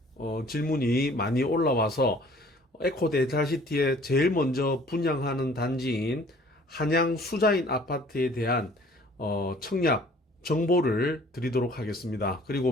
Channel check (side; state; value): both; normal; correlation 0.53